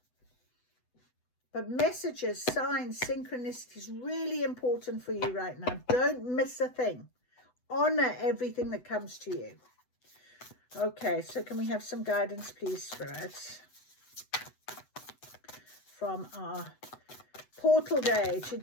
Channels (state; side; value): late; right; 8.0 ms